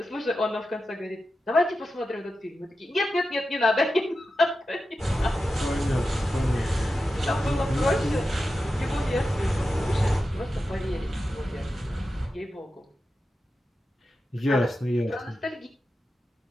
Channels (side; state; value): both; normal; correlation 0.91